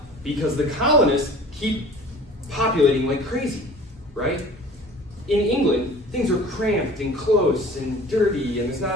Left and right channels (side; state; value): both; normal; correlation 0.45